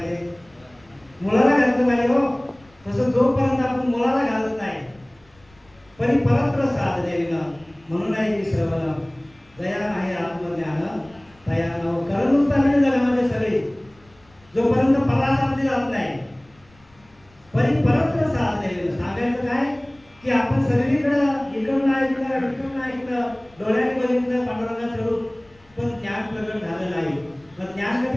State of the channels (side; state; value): left; noise; rumble, 30 dB below the sound